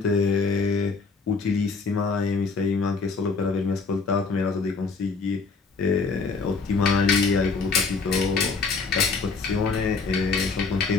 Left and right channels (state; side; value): quieter; right; 4.5 dB